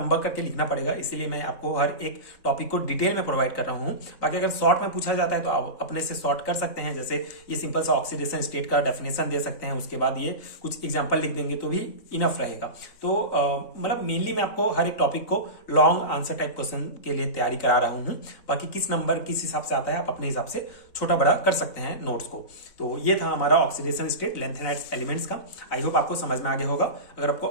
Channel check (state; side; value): late; right; 3.9 ms